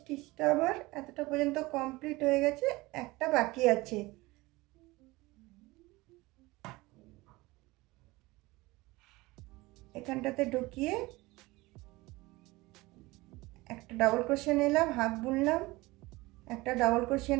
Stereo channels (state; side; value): quieter; left; 21.2 dB